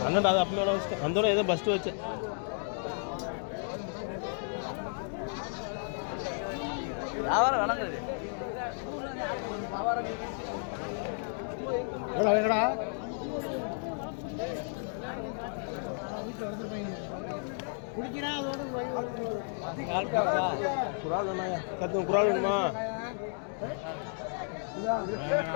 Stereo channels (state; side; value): silent; right; 56 dB below the other